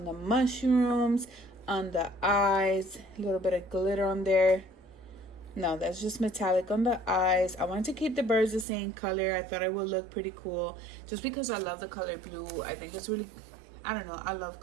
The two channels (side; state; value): left; drops out; at 8.7 s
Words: the mushrooms, on the eyes, a little bit of glitter on there. No, that's just metallic on the eyes. I wanted to keep the birds the same color. I thought it would look pretty cool just because I love the color blue. I think it's really, I don't know, I